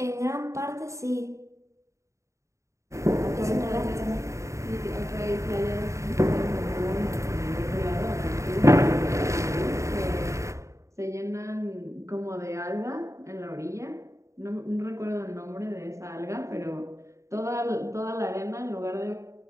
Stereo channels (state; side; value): late; left; 0.14 ms